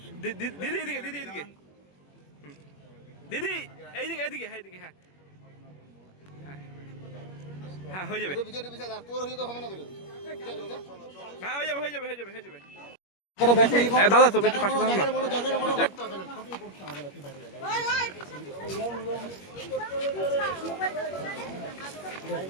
দিদি এদিকে, দিদি এদিকে, দিদি এইদিকে এইদিকে, হ্যাঁ এইদিকে, হ্যাঁ হ্যাঁ হয়ে যাবে, হ্যাঁ হয়ে যাবে, হয়ে যাবে, হয়ে যাবে, হয়ে যাবে। দাদা তুমি একটু পাশে থাকুন না।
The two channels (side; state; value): right; late; 21 ms